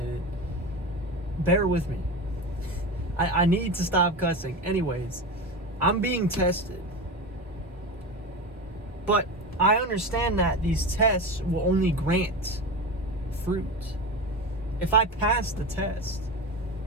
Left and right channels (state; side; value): normal; both; correlation 0.24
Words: it. Bear with me. I need to stop cussing. Anyways, I'm being tested. But I understand that these tests will only grant fruit. If I pass the test,